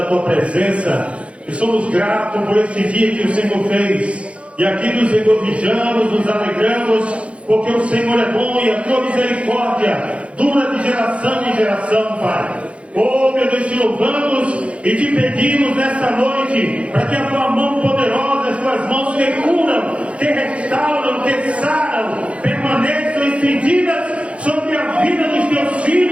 Tua presença e somos gratos por este dia que o Senhor fez. E aqui nos regozijamos, nos alegramos, porque o Senhor é bom e a Tua misericórdia dura de geração em geração, Pai. Oh, meu Deus, te louvamos e te pedimos nesta noite para que a Tua mão poderosa, as Tuas mãos que curam, que restauram, que saram, permaneçam estendidas sobre a vida dos Teus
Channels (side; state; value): left; late; 0.061 ms